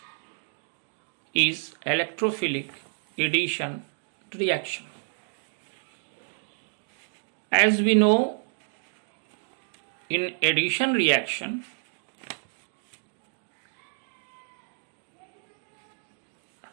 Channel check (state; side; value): silent; left; digital silence